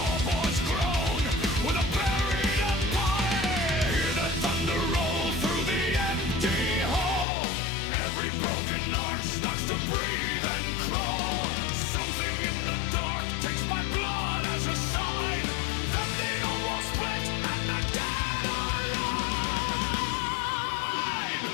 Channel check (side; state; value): right; drops out; at 7.2 s